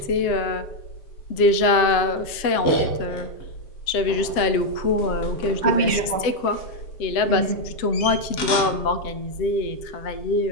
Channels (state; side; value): late; right; 7.8 ms